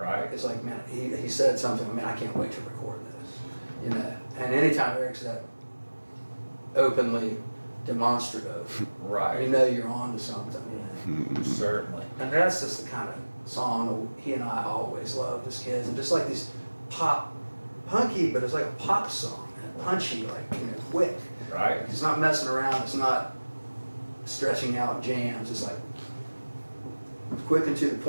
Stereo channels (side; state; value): both; inverted; correlation -1.00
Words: it's like, man, he said something, man, I can't wait to record this, you know. And anytime Eric's that openly demonstrative, Right. you know you're on to something, you know. Certainly. And that's just the kind of song that he and I always loved as kids, and just like these punky, but it's like a pop song, and punchy, like, you know, quick. Right. It's not messing around, it's not stretching out jams, it's like quick and to the